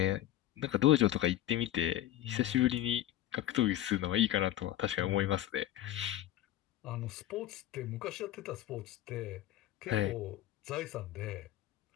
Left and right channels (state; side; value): quieter; right; 13.7 dB